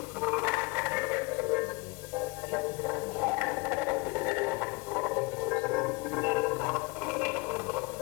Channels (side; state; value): right; quieter; 26.6 dB